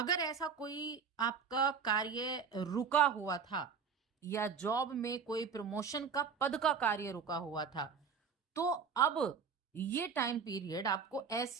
ऐसा कोई आपका कार्य रुका हुआ था या जॉब में कोई प्रमोशन का पद का कार्य रुका हुआ था, तो अब ये टाइम पीरियड आपको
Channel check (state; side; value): quieter; left; 6.1 dB